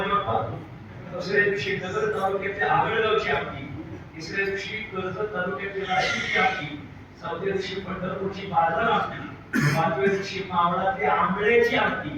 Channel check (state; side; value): identical; both; correlation 1.00